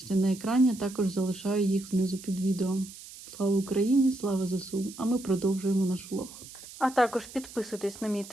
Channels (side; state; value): right; noise; hiss, 16 dB below the sound